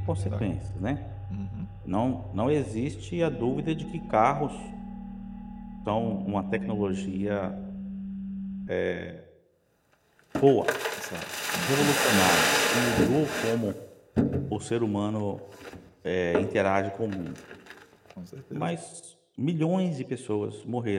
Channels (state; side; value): identical; both; correlation 1.00